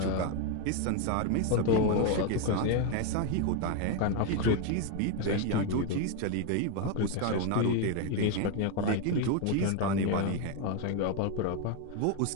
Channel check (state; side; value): different; both; correlation 0.02